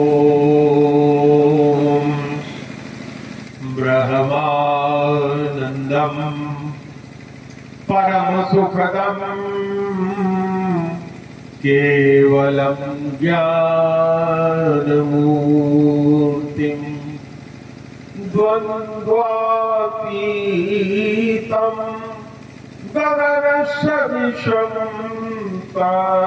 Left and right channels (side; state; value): both; identical; correlation 1.00